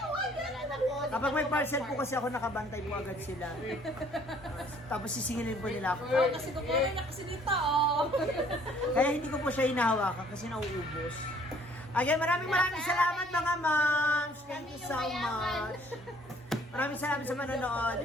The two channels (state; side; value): normal; both; correlation 0.59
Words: kapag may parcel po kasi ako nakabantay po agad sila. Tapos sisingilin po nila ako. Oh, kasi kukunin niya kasi dito, oh. Kaya hindi ko po siya hinahawakan kasi nauubos. Again, maraming salamat mga moms. Thank you so much. Maraming salamat sa manonood